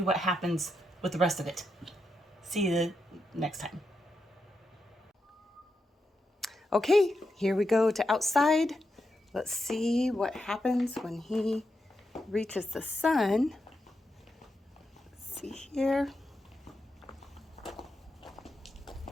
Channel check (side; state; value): both; normal; correlation 0.85